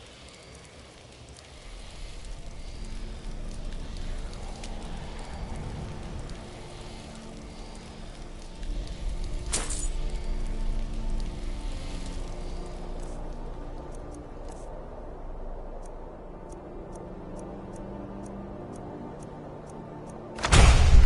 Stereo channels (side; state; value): both; identical; correlation 1.00